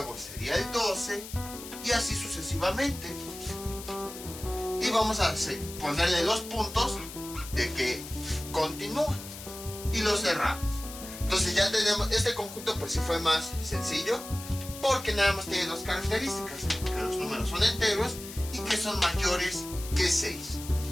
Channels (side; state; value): left; noise; hiss, 12 dB below the sound